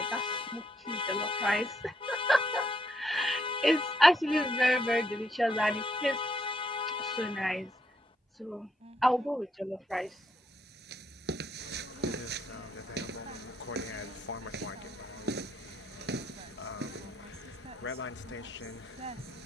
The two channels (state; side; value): normal; both; correlation 0.75